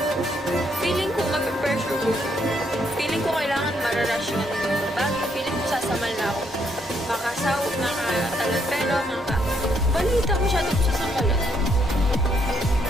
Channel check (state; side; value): normal; both; correlation 0.73